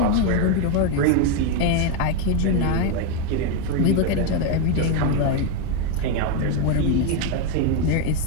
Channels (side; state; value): both; different; correlation 0.02